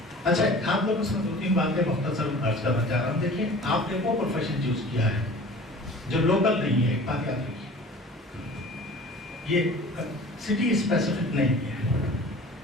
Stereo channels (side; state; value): both; normal; correlation 0.43